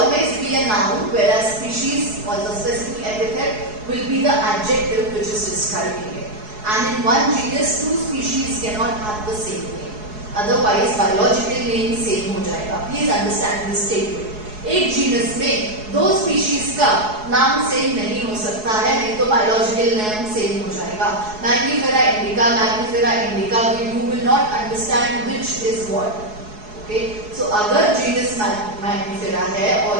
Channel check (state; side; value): late; left; 4.7 ms